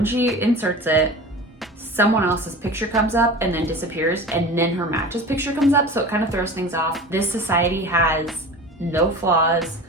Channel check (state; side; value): normal; both; correlation 0.35